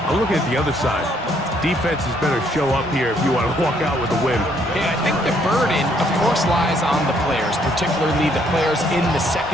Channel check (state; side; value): normal; both; correlation 0.68